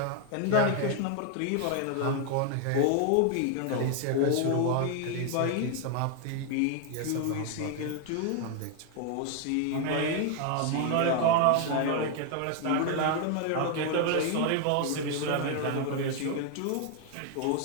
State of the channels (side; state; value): both; different; correlation 0.01